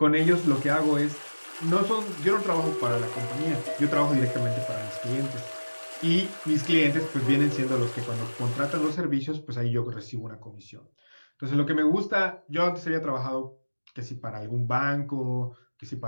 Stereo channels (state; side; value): inverted; both; correlation -1.00